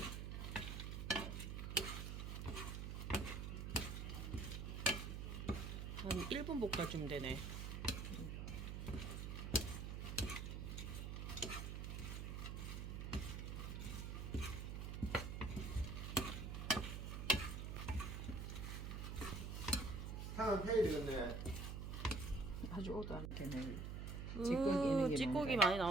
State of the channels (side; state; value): right; noise; hum, 4 dB below the sound